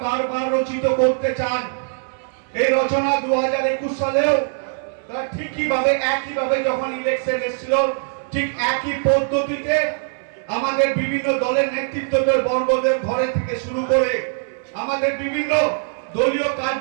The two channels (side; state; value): left; silent; 65 dB below the other